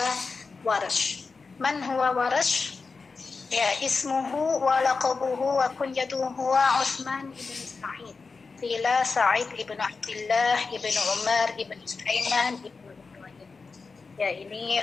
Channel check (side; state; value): right; quieter; 4.5 dB